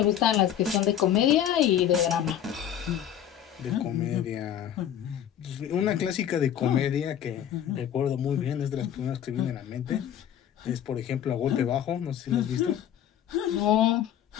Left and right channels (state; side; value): quieter; right; 10.1 dB